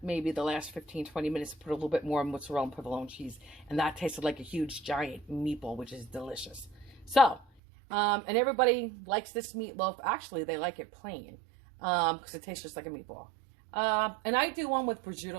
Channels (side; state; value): left; drops out; at 7.5 s